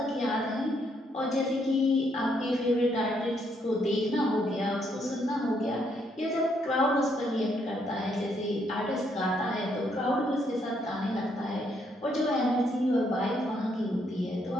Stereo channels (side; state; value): both; normal; correlation 0.73